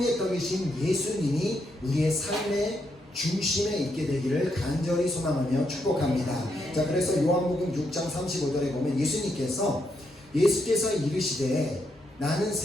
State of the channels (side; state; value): both; normal; correlation 0.79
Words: 떡이신 예수님이 우리의 삶의 중심에 있게 되기를 간절히 소망하며 축복합니다. 자, 그래서 요한복음 6장 35절에 보면 예수께서 이르시되 나는